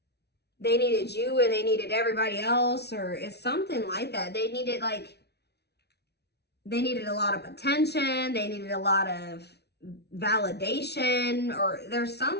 they needed you and they needed everybody else, or it's something like that. They needed a lot of attention. They needed a lot of validation, or there's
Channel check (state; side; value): late; right; 0.49 ms